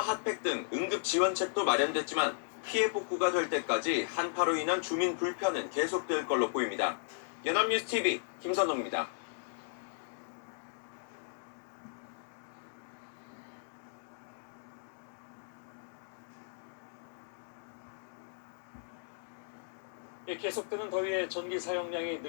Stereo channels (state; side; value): silent; right; digital silence